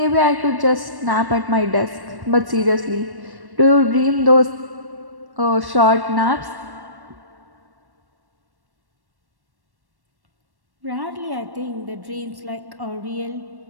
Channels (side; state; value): left; late; 1.1 ms